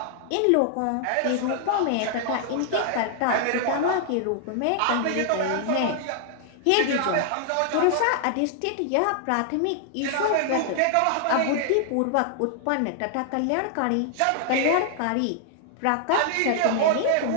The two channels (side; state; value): both; different; correlation 0.00